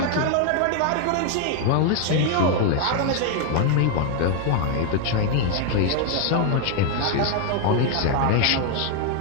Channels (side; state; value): both; different; correlation 0.00